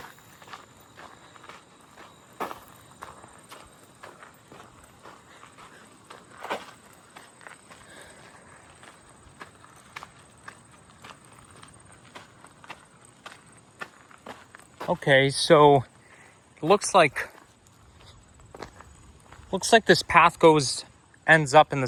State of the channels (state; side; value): identical; both; correlation 1.00